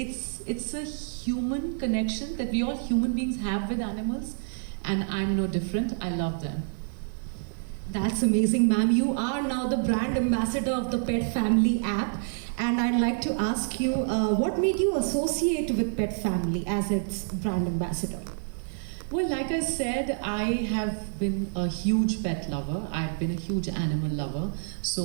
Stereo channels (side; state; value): left; silent; 60 dB below the other